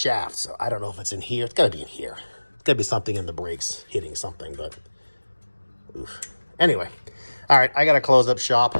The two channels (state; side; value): inverted; both; correlation -1.00